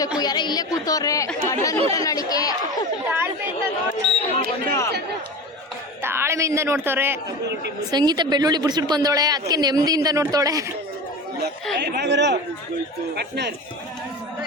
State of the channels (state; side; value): normal; both; correlation 0.29